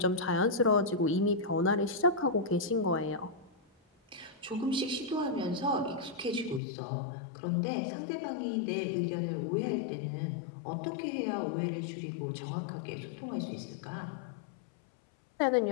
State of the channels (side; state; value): right; drops out; at 6.6 s